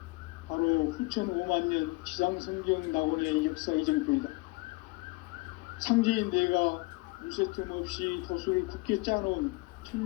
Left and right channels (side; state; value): right; quieter; 25.8 dB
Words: 바로 후천 5만년 지상성경 낙원의 역사 이정표이다. 상제인 내가 무쇠틈 없이 돛을 굳게 짜놓은